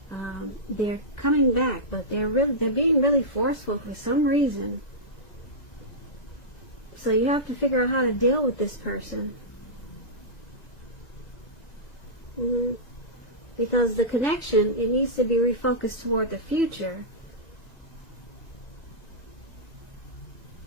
they're coming back, but they're being really forceful for some reason. So you have to figure out how to deal with this person. Because the connection, it needs to be refocused toward the future.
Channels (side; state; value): right; late; 2.0 ms